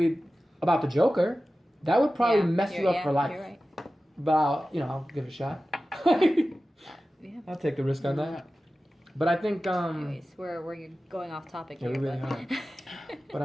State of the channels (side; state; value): both; normal; correlation 0.95